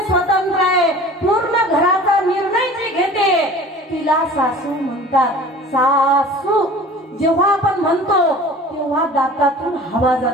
स्वतंत्र आहे, पूर्ण घराचा निर्णय जी घेते तिला सासू म्हणतात. सासू जेव्हा आपण म्हणतो तेव्हा दातातून हवा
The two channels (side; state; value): both; normal; correlation 0.43